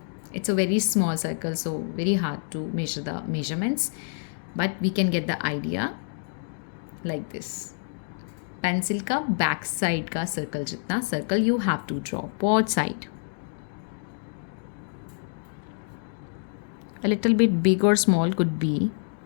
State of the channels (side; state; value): right; silent; digital silence